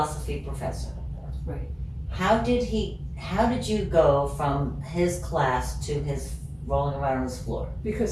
professor. Right. How did you go from his class to his rolling around on his floor? Because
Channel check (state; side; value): identical; both; correlation 1.00